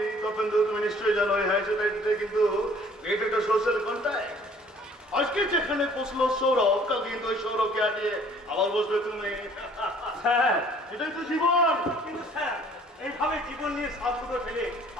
তপেন্দ্র? তুমি নিশ্চয়ই জানো এই হাই সোসাইটিতে কিন্তু এটা একটা সোশ্যাল কন্ট্যাক্ট। আজকে যেখানে বসলো সৌরভ, কালকে কিন্তু ওই সৌরভকে হাঁটিয়ে আবার বসবে তুমি। স্যার, এটাই তো জীবন। কিন্তু স্যার, এইভাবে জীবন নিয়ে সাবুটো ফেলে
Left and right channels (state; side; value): normal; both; correlation 0.55